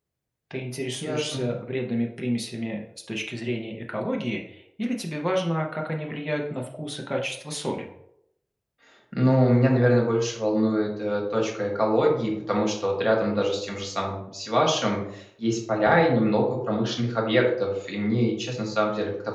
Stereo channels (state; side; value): identical; both; correlation 1.00